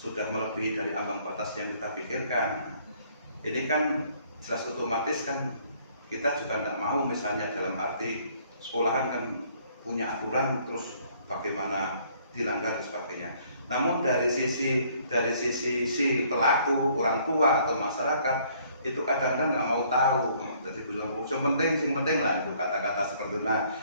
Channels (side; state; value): both; inverted; correlation -0.62